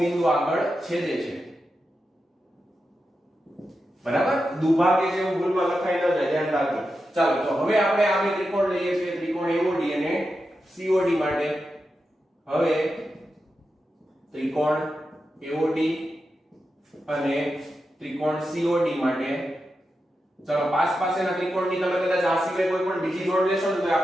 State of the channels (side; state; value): both; normal; correlation 0.89